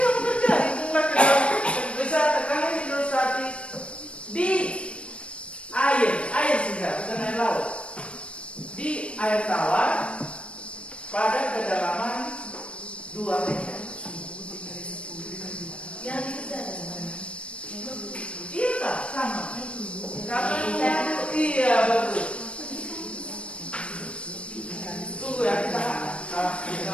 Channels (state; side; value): late; right; 0.060 ms